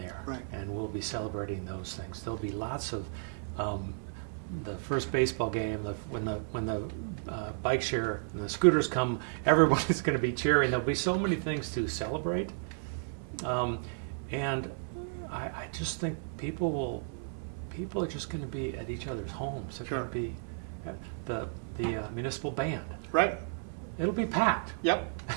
Right. and we'll be celebrating those things. There'll be lots of the first baseball game, when the bike share and the scooters come, everybody's going to be cheering. There'll be so many things to celebrate, and I just think people are just going to be at each other's homes. They're Sure. going to be at the municipal band. Right. It'll be packed. Yep.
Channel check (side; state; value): left; silent; 56 dB below the other